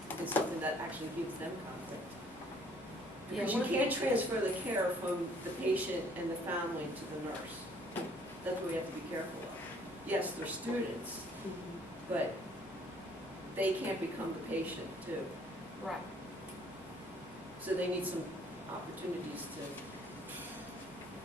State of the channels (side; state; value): both; normal; correlation 0.60